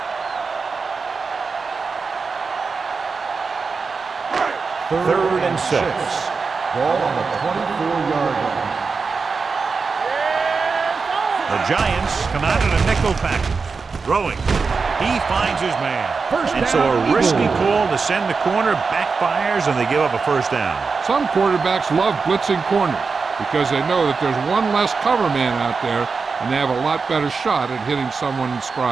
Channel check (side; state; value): left; quieter; 4.8 dB